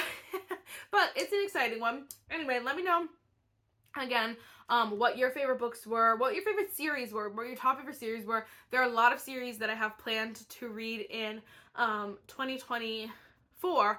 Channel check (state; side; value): identical; both; correlation 1.00